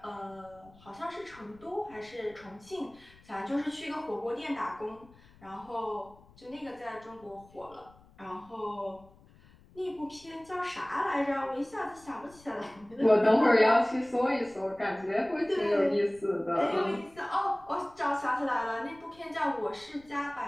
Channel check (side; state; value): left; noise; rumble, 25 dB below the sound